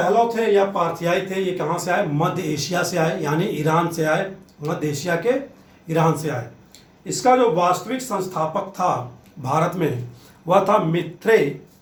थे या पार्थियाई थे, ये कहाँ से आए? मध्य एशिया से आए, यानी ईरान से आए। मध्य एशिया के ईरान से आए। इसका जो वास्तविक संस्थापक था भारत में, वह था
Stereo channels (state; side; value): identical; both; correlation 1.00